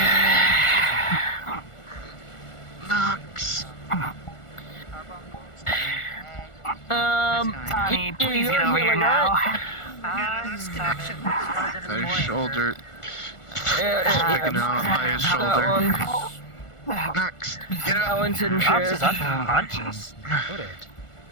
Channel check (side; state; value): right; late; 1.4 ms